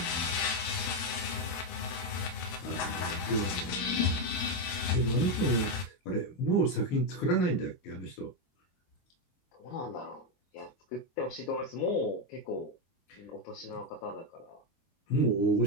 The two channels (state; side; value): late; right; 22 ms